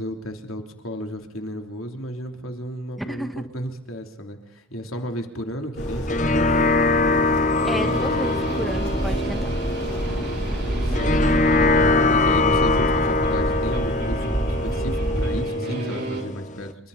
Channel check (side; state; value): both; normal; correlation 0.40